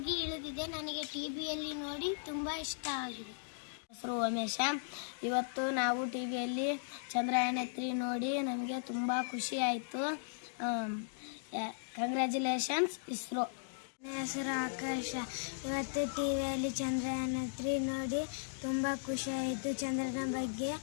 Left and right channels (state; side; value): silent; right; digital silence